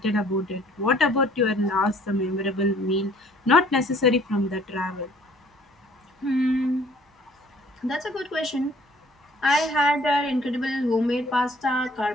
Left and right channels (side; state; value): both; normal; correlation 0.57